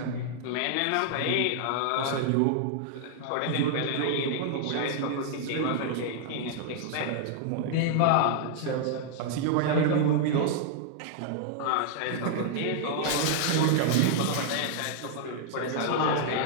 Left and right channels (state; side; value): different; both; correlation -0.01